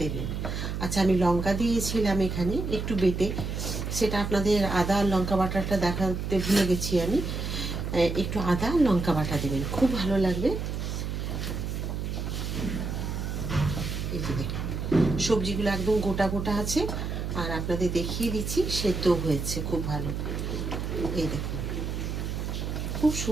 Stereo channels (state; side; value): noise; right; hum, 3 dB below the sound